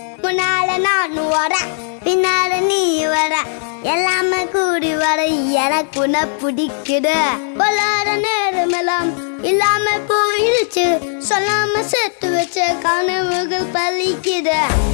முன்னால நான் வர பின்னால நீ வர எல்லாமே கூடி வர எனக்கு உன்னை பிடிக்குது பொல்லாத நேரமெல்லாம் இல்லாம போயிடுச்சு சொல்லாம சேர்த்து வச்ச கனவுகள் பலிக்குது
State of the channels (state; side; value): silent; right; digital silence